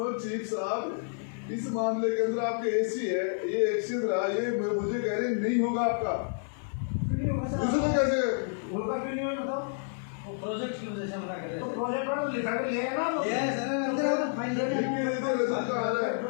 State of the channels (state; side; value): silent; right; 58 dB below the other